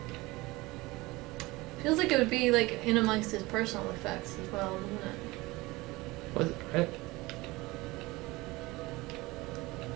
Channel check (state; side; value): quieter; left; 21.5 dB